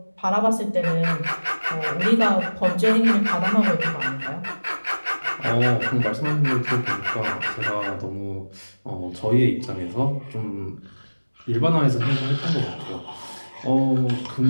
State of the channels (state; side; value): inverted; both; correlation -1.00